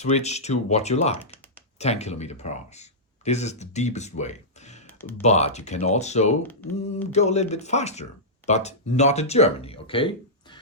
to what you like, 10 kilometer per hour. This is the deepest way. But you can also go a little bit faster, but not in Germany, okay?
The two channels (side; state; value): both; normal; correlation -0.13